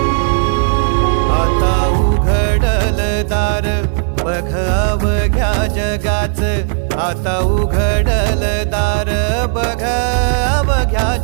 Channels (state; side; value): silent; left; digital silence